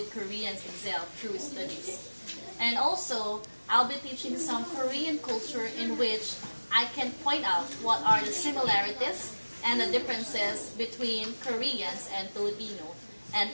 Koreans excel through studies. And also, I'll be teaching some Korean culture in which I can point out what are the similarities and the differences between Koreans and Filipino. And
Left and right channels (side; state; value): both; inverted; correlation -1.00